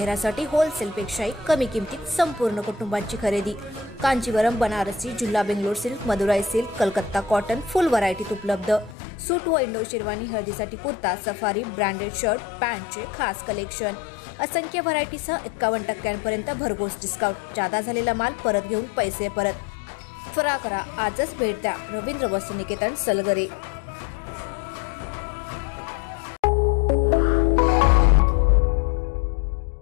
होलसेलपेक्षाही कमी किमतीत संपूर्ण कुटुंबाची खरेदी। कांजीवरम, बनारसी, जुल्ला Bangalore silk, Madurai silk, Calcutta cotton full व्हरायटीत उपलब्ध। सूट व इंडो शेरवानी, हळदीसाठी कुर्ता, सफारी, ब्रँडेड शर्ट, पॅन्टचे खास कलेक्शन, असंख्य व्हरायटीसह 51% भरघोस डिस्काउंट। जादा झालेला माल परत घेऊन पैसे परत। त्वरा करा, आजच भेट द्या रवींद्र वस्त्रनिकेतन सलगरे।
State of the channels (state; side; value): drops out; right; at 9.0 s